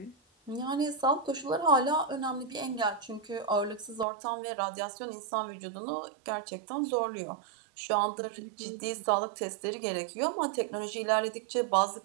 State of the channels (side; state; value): left; drops out; at 4.0 s